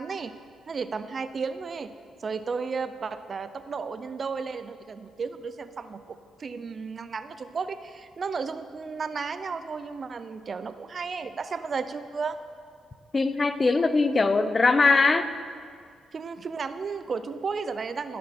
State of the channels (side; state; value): both; normal; correlation 0.88